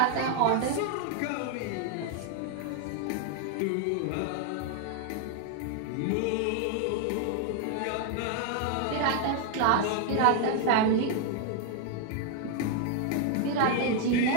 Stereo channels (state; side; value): different; both; correlation 0.00